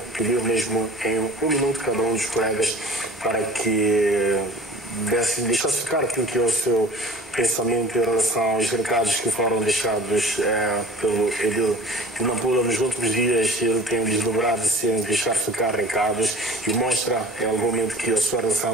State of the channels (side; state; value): both; normal; correlation 0.43